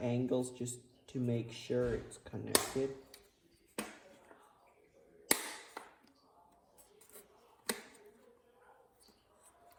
just to make sure it's connected.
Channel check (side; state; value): both; identical; correlation 1.00